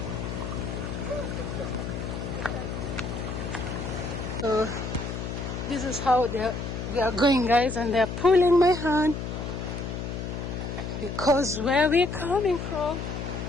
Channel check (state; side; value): noise; left; hum, 5 dB below the sound